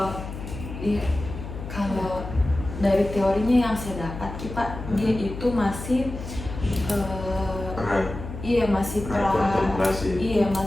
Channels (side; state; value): left; noise; hum, 9 dB below the sound